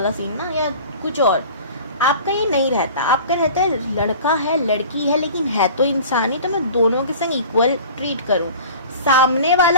सीन ना, या कुछ और। आपका ये नहीं रहता, आपका रहता है लड़का है लड़की है लेकिन है तो इंसान ही, तो मैं दोनों के संग इक्वल ट्रीट करूं। सामने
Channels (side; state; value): both; inverted; correlation -0.41